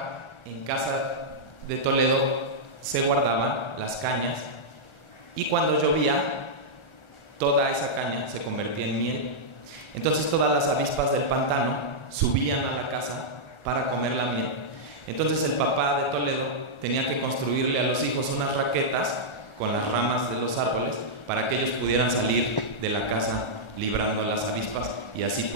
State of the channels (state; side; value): late; right; 1.4 ms